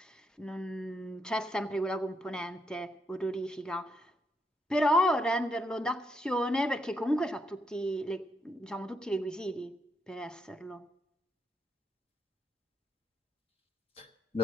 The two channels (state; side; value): normal; both; correlation 0.78